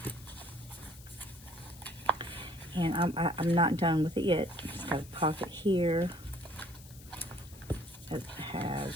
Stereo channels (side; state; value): left; noise; hiss, 20 dB below the sound